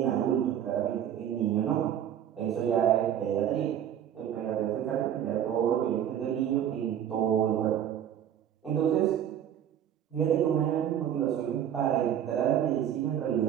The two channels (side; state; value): left; quieter; 10.0 dB